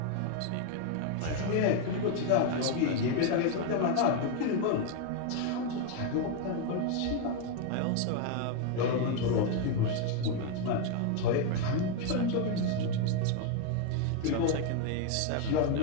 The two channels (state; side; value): different; both; correlation 0.01